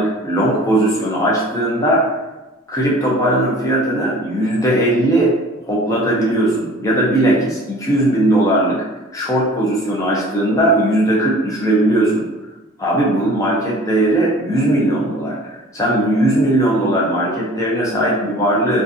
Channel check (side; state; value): both; normal; correlation 0.46